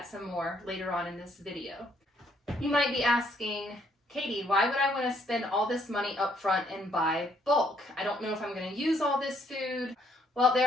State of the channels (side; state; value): both; normal; correlation 0.68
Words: some more later on in this video. You might be asking, Katie, why would I want to spend all this money up front and buy bulk? I don't know if I'm going to use all this food. Well,